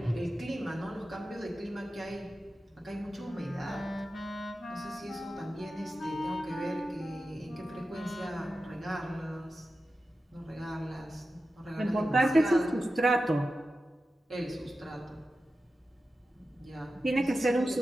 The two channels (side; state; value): both; normal; correlation 0.92